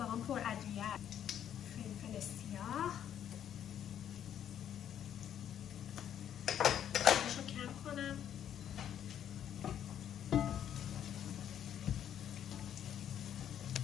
پر ادویه هست. فلفل سیاه رو کم کنم.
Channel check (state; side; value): quieter; right; 9.9 dB